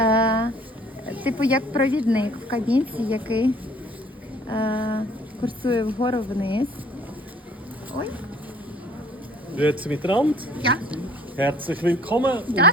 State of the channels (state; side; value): normal; both; correlation 0.55